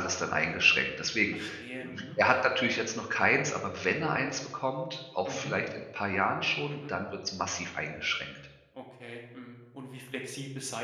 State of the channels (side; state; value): both; identical; correlation 1.00